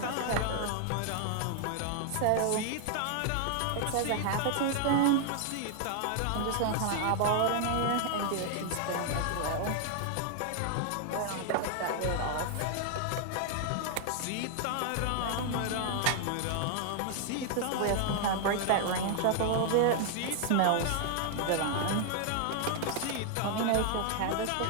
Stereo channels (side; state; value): both; different; correlation 0.00